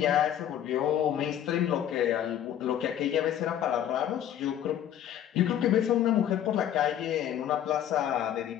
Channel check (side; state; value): right; quieter; 10.6 dB